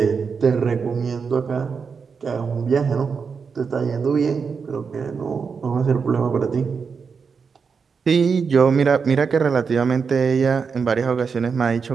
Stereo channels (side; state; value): left; quieter; 5.7 dB